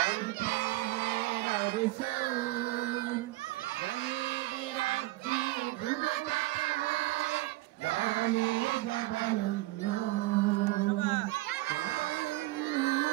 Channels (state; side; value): quieter; left; 19.7 dB